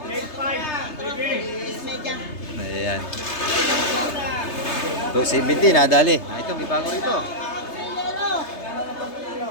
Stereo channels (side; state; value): right; late; 3.3 ms